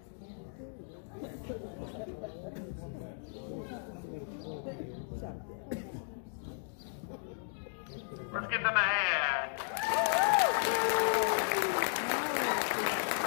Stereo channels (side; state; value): right; silent; digital silence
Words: Let's give them a hand.